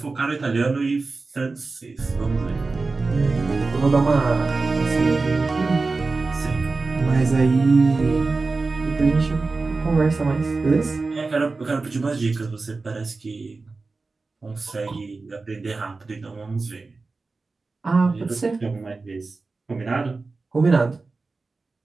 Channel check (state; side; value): quieter; left; 3.8 dB